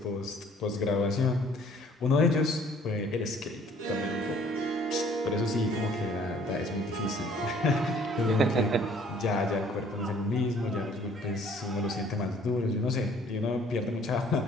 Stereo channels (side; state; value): both; normal; correlation 0.57